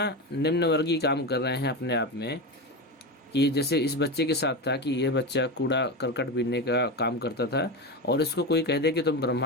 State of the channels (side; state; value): both; normal; correlation 0.19